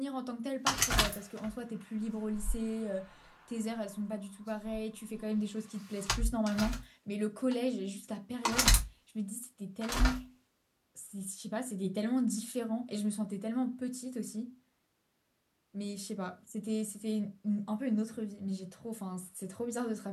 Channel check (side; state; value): both; identical; correlation 1.00